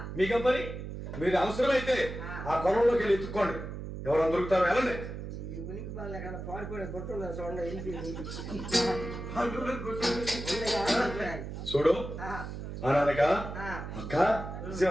మీకేం పని? మీరు అవసరమైతే ఆ పొలంలోకి వెళ్ళి ఎత్తుక్కోండి, ఎవరైనా దొరుకుతారో వెళ్ళండి. ఉనికి బాగా కదా పాడిపోయిన గుర్తున్నా చూడండి. చూడు అనగా అక్క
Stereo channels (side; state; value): right; noise; hum, 8 dB below the sound